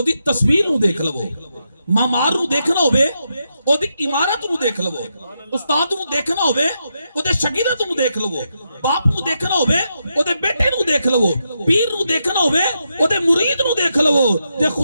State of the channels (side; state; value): both; inverted; correlation -0.83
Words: دی تصویر نو دیکھ لو، معمار نو دیکھنا ہوئے او دی عمارت نو دیکھ لو، استاد نو دیکھنا ہوئے او دے شاگرد نو دیکھ لو، باپ نو دیکھنا ہوئے او دے بیٹے نو دیکھ لو، پیر نو دیکھنا ہوئے او دے مرید نو دیکھ لو، دے